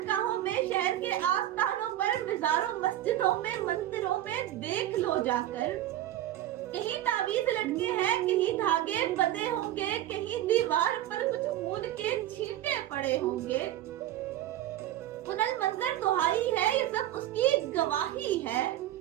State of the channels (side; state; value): left; quieter; 13.2 dB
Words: में, शहर के आस्थानों पर, मिज़ारों, मस्जिदों में, मंदिरों में देख लो जाकर, कहीं तावीज़ लटके हैं, कहीं धागे बंधे होंगे, कहीं दीवार पर कुछ खून के छींटे पड़े होंगे। पुनः मंजर दुहाई है, ये सब उसकी गवाही है